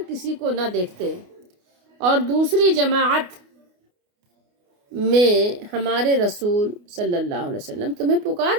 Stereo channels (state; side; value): late; left; 29 ms